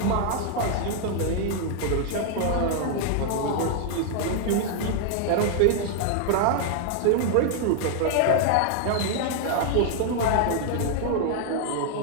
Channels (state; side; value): different; both; correlation 0.00